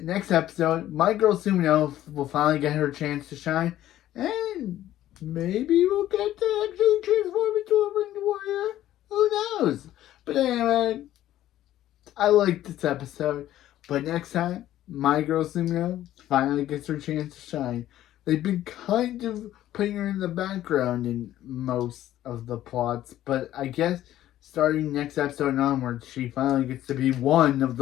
next episode, my girl Sumino will finally get her chance to shine, and maybe we'll get to actually transform into a ringed warrior. Who knows? But anyway, I like this episode. But next time, my girl Sumino finally gets her chance to shine. They've been kind of putting her in the background in most of the plots, but I guess starting next episode onwards, she finally gets to be one of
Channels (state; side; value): quieter; right; 13.2 dB